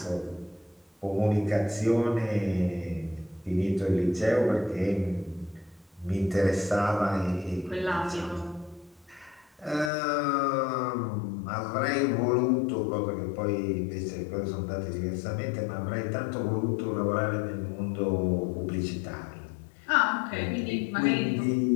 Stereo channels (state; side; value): drops out; right; at 9.9 s